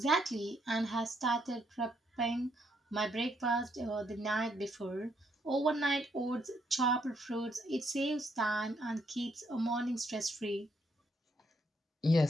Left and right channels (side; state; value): both; normal; correlation 0.73